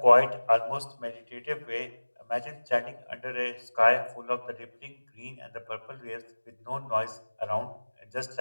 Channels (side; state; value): both; inverted; correlation -1.00